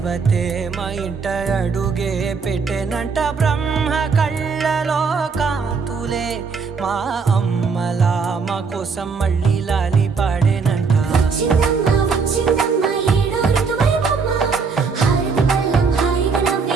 మా ఇంట అడుగే పెట్టెనంట బ్రహ్మ కళ్ళలో కాంతులే మా అమ్మలా మా కోసం మళ్ళీ లాలి పాడేనంట.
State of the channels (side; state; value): left; quieter; 5.2 dB